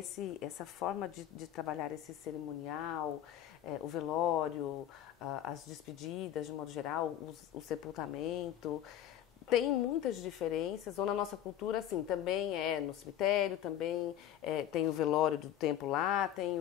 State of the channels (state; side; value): quieter; right; 11.2 dB